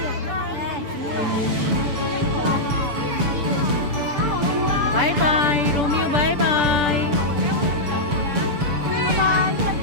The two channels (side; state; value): left; late; 7.1 ms